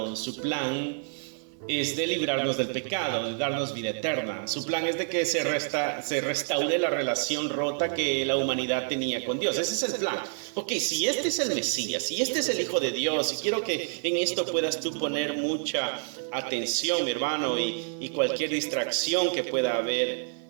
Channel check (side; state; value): left; silent; 56 dB below the other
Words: Su plan es de librarnos del pecado, de darnos vida eterna. Su plan es de que se restaure la relación rota que la humanidad tenía con Dios. Ese es el plan. Ok, si este es el Mesías, si este es el Hijo de Dios, y quiero que en esto puedas tú poner mucha atención, mi hermano, y cualquier distracción que pueda haber